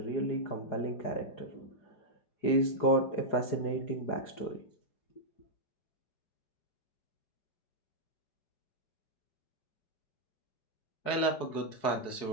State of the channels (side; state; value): right; late; 4.6 ms